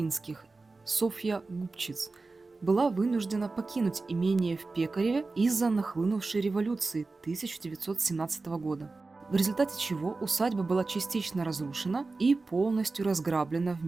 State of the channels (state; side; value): quieter; left; 3.7 dB